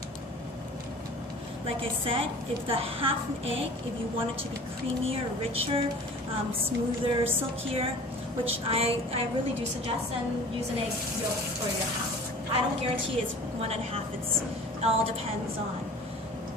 Like I said, if the half an egg, if you want it to be creamier, richer, smoother, silkier, which I really do suggest, then use an egg yolk for your half. I don't guarantee it's 1.5. It all depends on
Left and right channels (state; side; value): normal; both; correlation 0.44